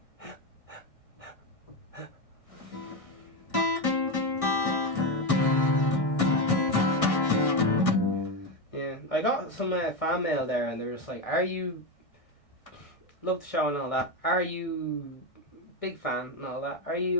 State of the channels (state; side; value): late; right; 1.6 ms